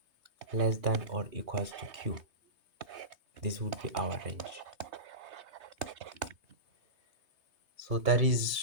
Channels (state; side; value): late; left; 3.2 ms